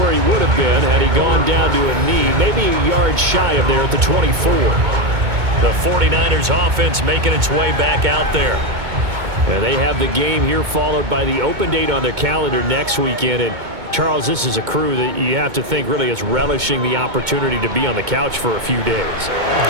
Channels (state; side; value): late; left; 2.2 ms